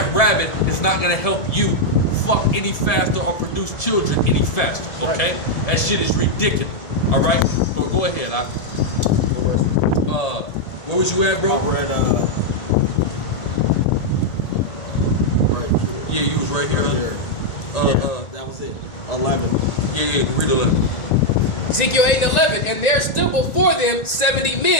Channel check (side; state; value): right; late; 1.9 ms